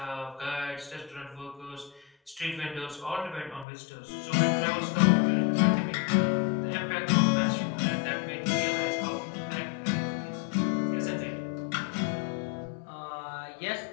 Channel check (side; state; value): right; drops out; at 3.7 s